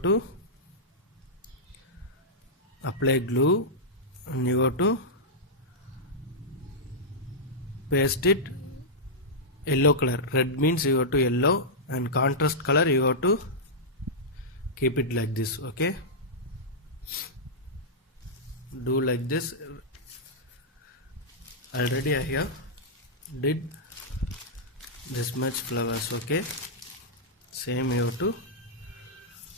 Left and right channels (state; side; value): normal; both; correlation -0.10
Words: to apply glue and you have to paste it yellow color. Red means you have to yellow, and contrast color you have to keep it like this. Okay, do like this. Already I have did this much flowers. Okay, same you have to